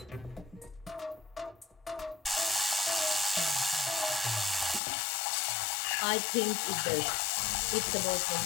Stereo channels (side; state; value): right; drops out; at 4.8 s